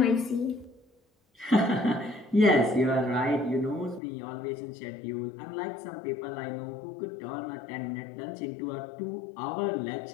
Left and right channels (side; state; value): right; drops out; at 4.0 s